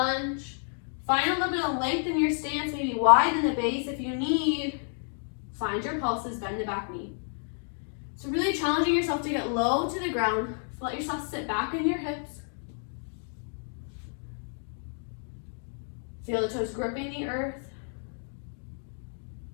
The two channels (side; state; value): right; silent; 58 dB below the other